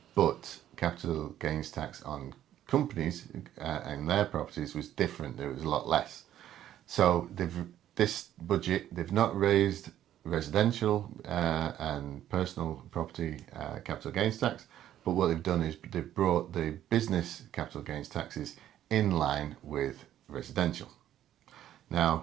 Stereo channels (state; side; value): quieter; left; 11.8 dB